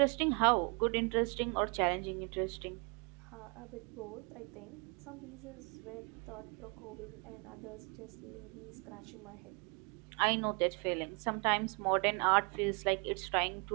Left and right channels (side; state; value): left; quieter; 33.8 dB